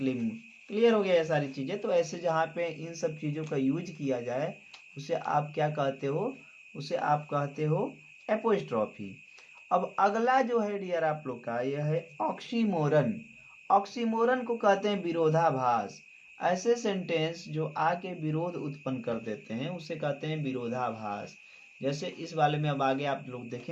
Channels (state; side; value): identical; both; correlation 1.00